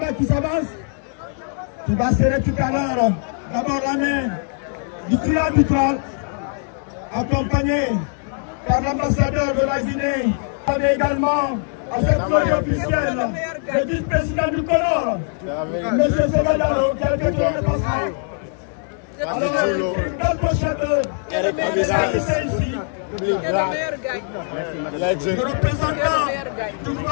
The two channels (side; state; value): right; silent; 55 dB below the other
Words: qui s'avance, qui va serrer tout à l'heure d'abord la main du trio arbitral, accompagné par l'ambassadeur de la Guinée, mais également à cette soirée officielle, le vice-président du Comore, M. Segadaro, qui a été le dépassement. Alors, une belle pochette ici. Le représentant du